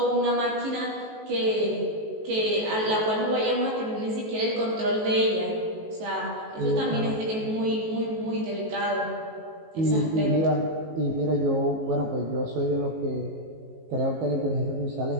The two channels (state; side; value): late; left; 19 ms